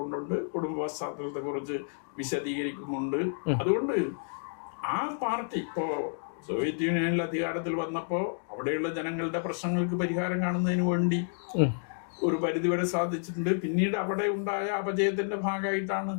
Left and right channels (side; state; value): right; silent; digital silence